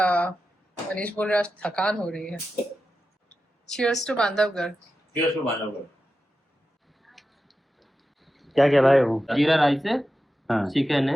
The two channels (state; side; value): normal; both; correlation 0.91